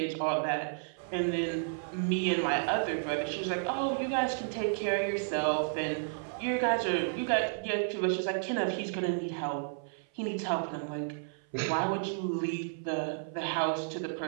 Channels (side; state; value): left; silent; 56 dB below the other